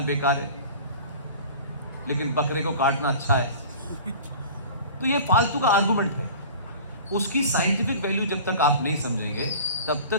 बेकार है, लेकिन बकरे को काटना अच्छा है। तो ये फालतू का आर्गुमेंट है। उसकी साइंटिफिक वैल्यू जब तक आप नहीं समझेंगे तब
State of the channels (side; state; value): both; inverted; correlation -0.41